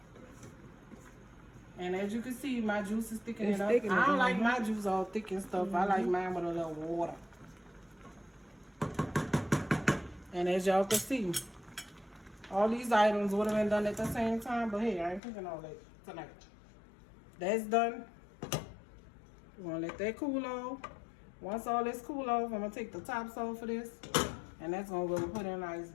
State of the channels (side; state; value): right; drops out; at 15.2 s